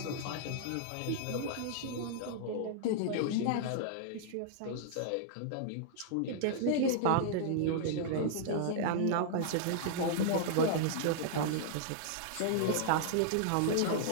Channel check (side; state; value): both; different; correlation -0.01